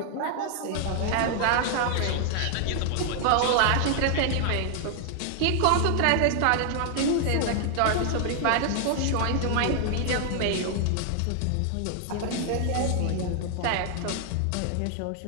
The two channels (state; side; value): different; both; correlation 0.00